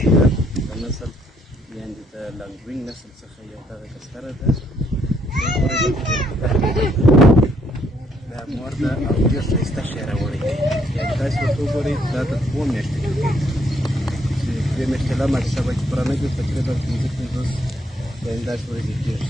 د نسل یعنې د لانګوینګ نسل څخه یو دغه کستره ده دا مور ده او ډېر ښایسته شی راوړی دی. یعنې تاسې ورته وګورئ دا د 2 میاشتې کړکۍ چې 2 میاشتې لا ماتې شوه چې پرانه کې تقریبا 15 یعنې داسې ورځې کېږي.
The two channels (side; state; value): both; normal; correlation 0.70